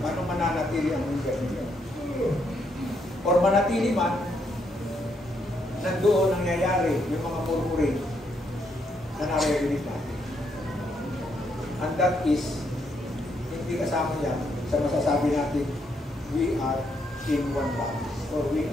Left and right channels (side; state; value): both; normal; correlation 0.76